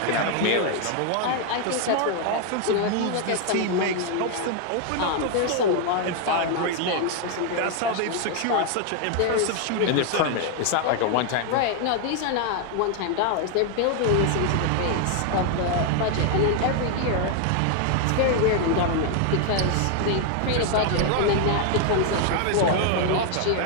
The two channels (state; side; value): different; both; correlation 0.00